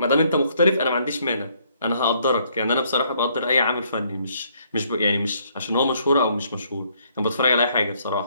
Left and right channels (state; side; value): inverted; both; correlation -0.68